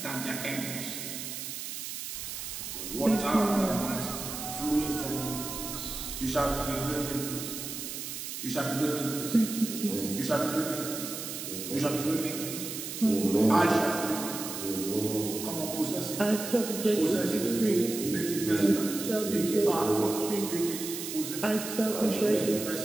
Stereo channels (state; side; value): noise; right; hiss, 7 dB below the sound